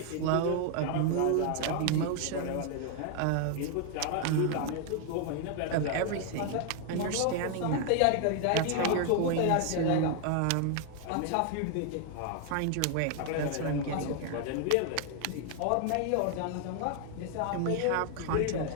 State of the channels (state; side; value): different; both; correlation 0.00